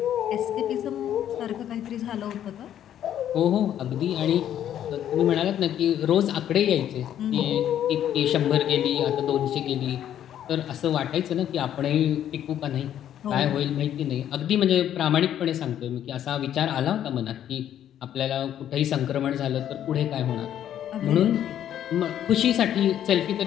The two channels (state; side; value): quieter; right; 10.7 dB